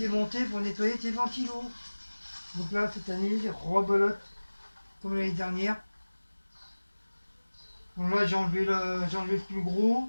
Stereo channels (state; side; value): inverted; both; correlation -1.00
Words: pour nettoyer tes ventilos. Donc là, cette année, rebelote comme l'année dernière. Donc là, j'ai enlevé le plus gros.